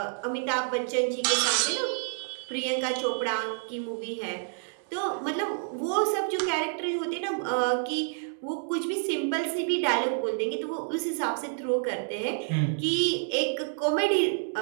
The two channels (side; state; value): left; silent; digital silence